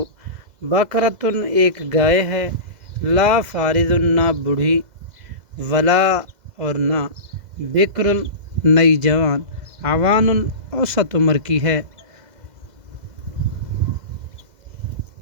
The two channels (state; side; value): late; left; 2.0 ms